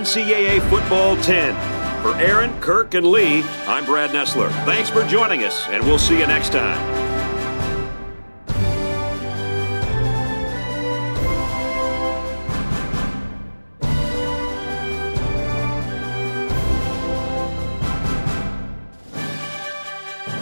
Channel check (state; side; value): inverted; both; correlation -1.00